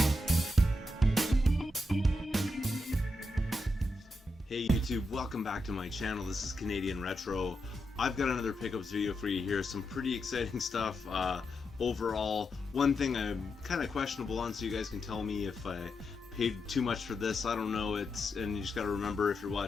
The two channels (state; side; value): normal; both; correlation 0.85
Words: YouTube, welcome back to my channel. This is Canadian Retro. I've got another pickups video for you here. Some pretty exciting stuff. Overall, one thing I'm kind of questionable on, so you guys can tell me if I paid too much for this. I don't know. And you just got to remember, if you're